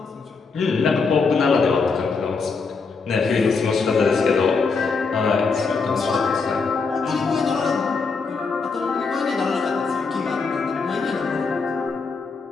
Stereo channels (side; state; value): right; quieter; 4.7 dB